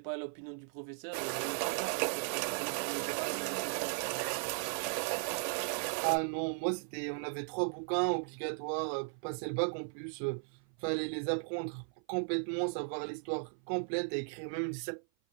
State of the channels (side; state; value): left; silent; 53 dB below the other